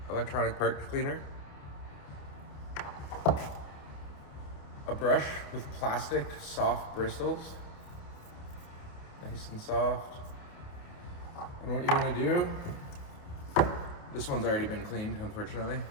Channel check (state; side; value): late; right; 29 ms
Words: electronic parts cleaner, a brush with plastic soft bristles, nice and soft. And what you want to do, this one's already been cleaned, unfortunately,